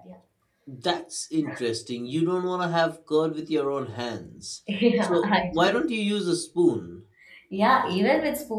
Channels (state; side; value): identical; both; correlation 1.00